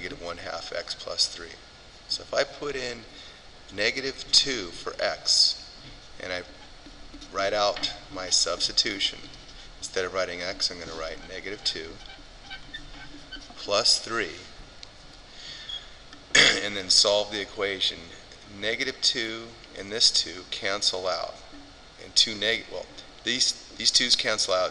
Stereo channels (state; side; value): identical; both; correlation 1.00